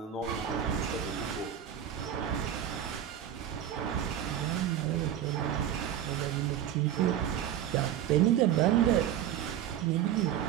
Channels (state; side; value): quieter; left; 10.5 dB